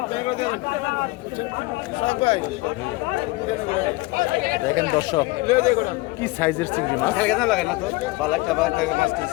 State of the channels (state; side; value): quieter; right; 22.1 dB